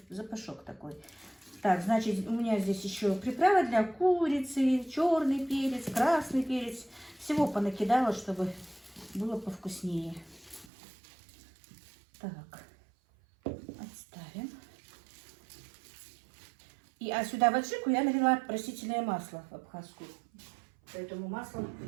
запашок такой. Так, значит, у меня здесь еще приправа для курицы, черный перец, красный перец. Всего понакидала, чтобы было повкуснее. Так, отставим. А сюда в аджику я налила растительное масло абхазскую. Поэтому масло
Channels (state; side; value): drops out; left; at 10.7 s